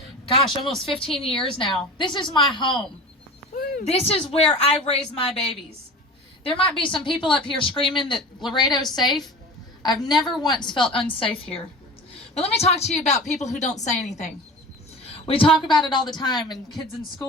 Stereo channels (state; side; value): normal; both; correlation 0.35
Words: almost 15 years now. This is my home. Woo. This is where I raise my babies. There might be some people up here screaming that Laredo's safe. I've never once felt unsafe here. But let me talk to you about people who don't say anything. We talk about it all the time, and kids in